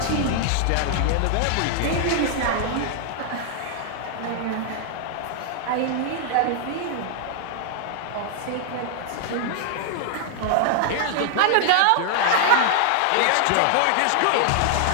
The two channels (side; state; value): both; different; correlation 0.00